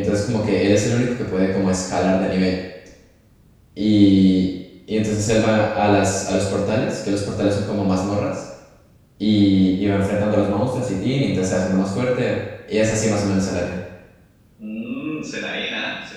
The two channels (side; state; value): both; identical; correlation 1.00